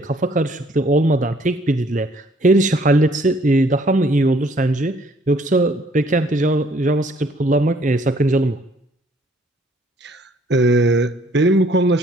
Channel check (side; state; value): both; normal; correlation 0.62